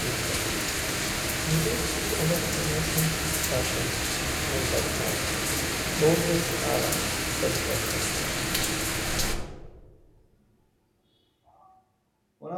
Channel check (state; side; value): identical; both; correlation 1.00